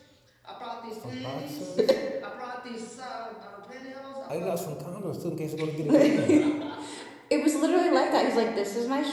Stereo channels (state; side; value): identical; both; correlation 1.00